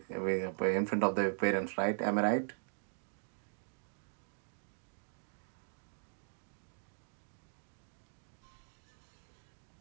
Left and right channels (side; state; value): left; silent; digital silence